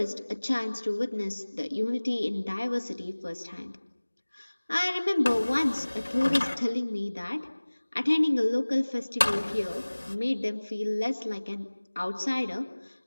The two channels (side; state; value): both; inverted; correlation -1.00